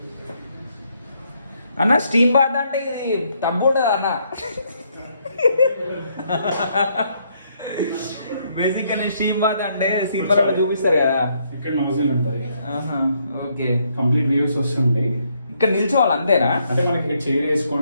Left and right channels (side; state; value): both; inverted; correlation -0.72